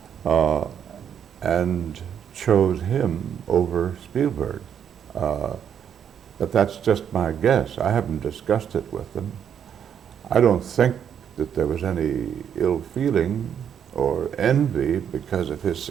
and chose him over Spielberg. But that's just my guess. I haven't discussed it with them. I don't think that there was any ill feeling or envy because of his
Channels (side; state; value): left; quieter; 8.6 dB